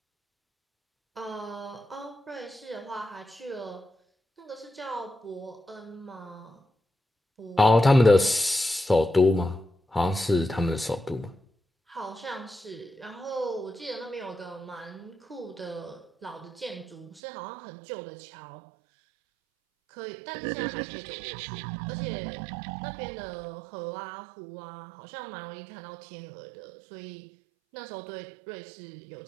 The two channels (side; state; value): left; drops out; at 17.2 s